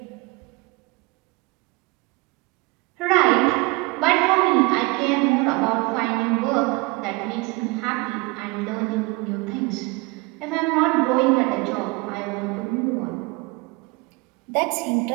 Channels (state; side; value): quieter; left; 25.4 dB